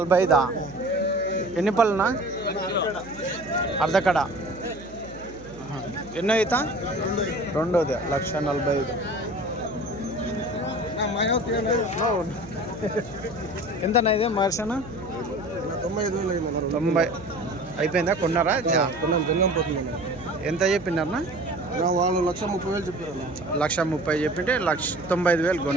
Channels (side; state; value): right; noise; hum, 18 dB below the sound